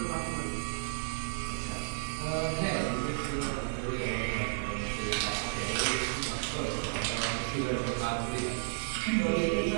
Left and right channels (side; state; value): left; silent; digital silence